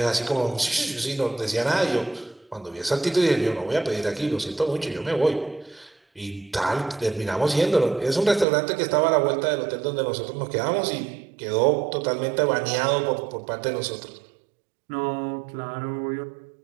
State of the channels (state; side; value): drops out; left; at 8.5 s